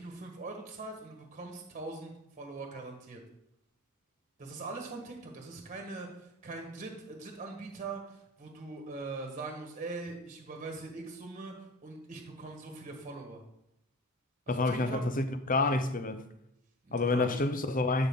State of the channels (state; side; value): normal; both; correlation 0.37